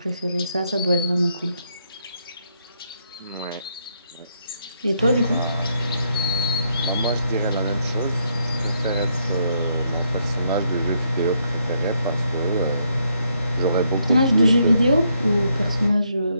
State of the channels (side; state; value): both; inverted; correlation -0.75